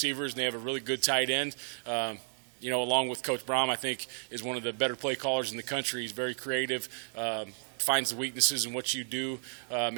and they have a really good tight end. Along with Coach Braum, I think is one of the better play callers in the country. He's very creative. Finds the weaknesses in what you do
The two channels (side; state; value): left; silent; digital silence